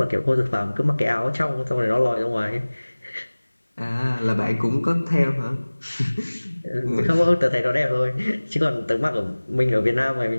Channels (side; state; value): both; inverted; correlation -1.00